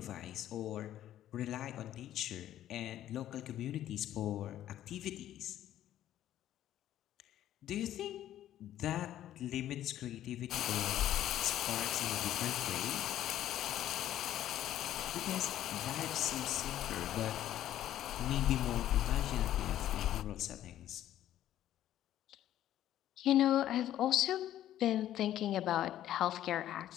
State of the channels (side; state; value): right; quieter; 12.3 dB